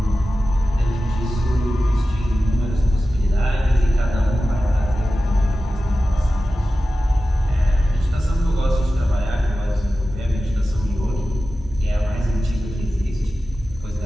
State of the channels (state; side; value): normal; both; correlation 0.94